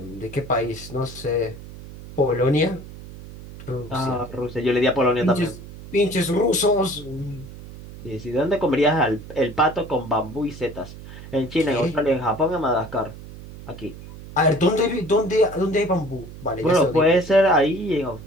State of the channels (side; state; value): right; noise; hum, 15 dB below the sound